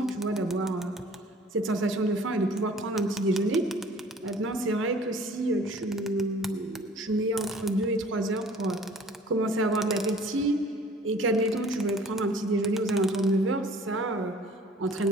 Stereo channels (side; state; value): both; normal; correlation 0.51